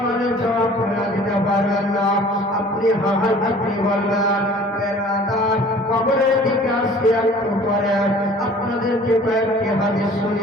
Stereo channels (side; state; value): both; normal; correlation 0.49